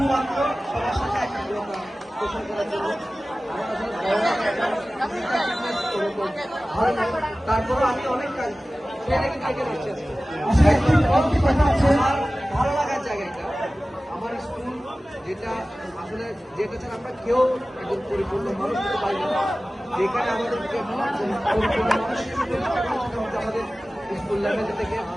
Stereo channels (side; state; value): both; normal; correlation 0.97